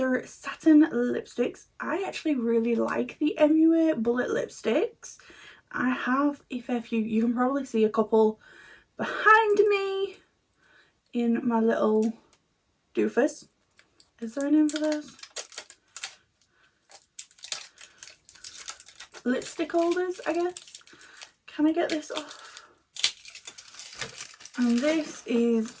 satin lipsticks. I actually really like the MUA bullet lipsticks. I have a fair few. You can probably see a couple behind me in my little doofus. Is there a name for this? Lipstick holders, I guess. Can I get this off? And this is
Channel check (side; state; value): both; identical; correlation 1.00